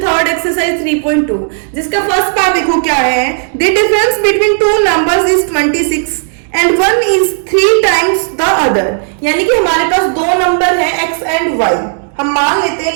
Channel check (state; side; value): silent; left; digital silence